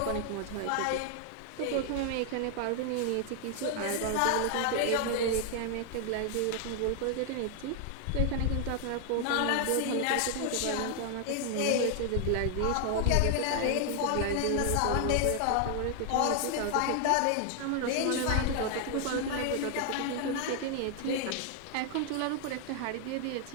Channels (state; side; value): different; both; correlation 0.00